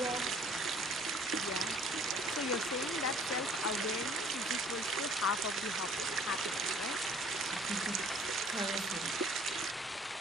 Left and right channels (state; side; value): normal; both; correlation 0.55